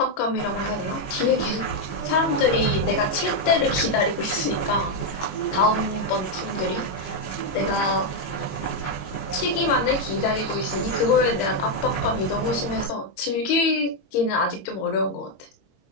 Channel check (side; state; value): right; late; 22 ms